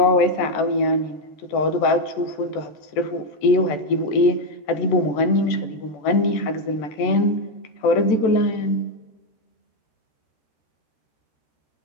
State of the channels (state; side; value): late; right; 14 ms